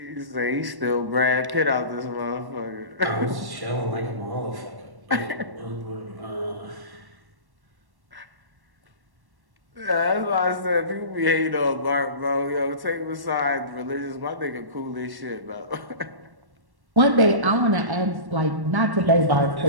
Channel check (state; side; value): late; left; 1.1 ms